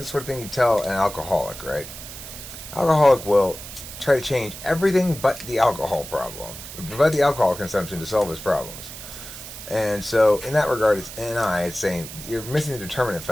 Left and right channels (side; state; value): right; noise; hiss, 12 dB below the sound